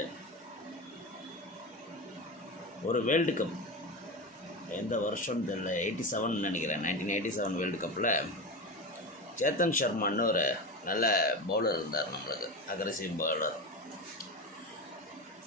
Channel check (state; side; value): normal; both; correlation 0.22